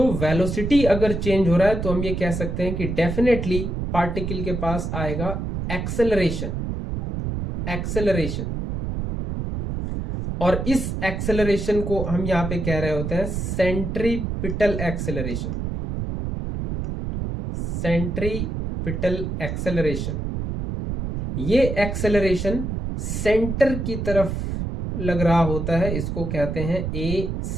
वेलोसिटी अगर चेंज हो रहा है तो हम ये कह सकते हैं कि डेफिनेटली पार्टिकल के पास आएगा एक्सेलरेशन। और इस एक्सेलरेशन को हम यहां पे कह रहे होते हैं सेंट्रीपिटल एक्सेलरेशन। सेंट्रीपिटल एक्सेलरेशन, ये एक्सेलरेशन सेंटर की तरफ लग रहा होता है, इसको कहते हैं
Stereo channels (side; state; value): right; noise; rumble, 3 dB below the sound